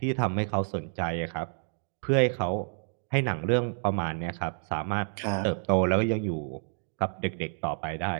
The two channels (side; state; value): left; silent; digital silence